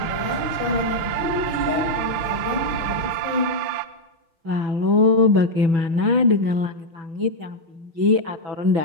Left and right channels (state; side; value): late; left; 6.4 ms